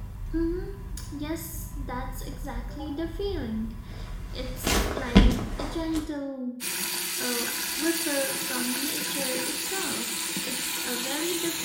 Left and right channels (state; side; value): identical; both; correlation 1.00